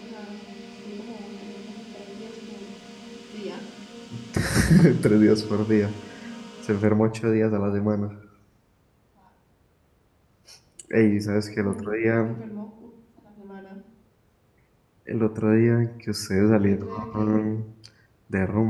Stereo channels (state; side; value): identical; both; correlation 1.00